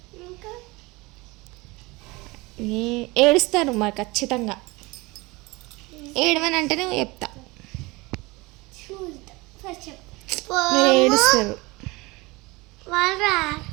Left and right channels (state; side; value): quieter; left; 23.5 dB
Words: ఏడుస్తారు మరి ఖచ్చితంగా. ఏడవని అంటేనే చెప్తా, మీరు ఏడుస్తారు.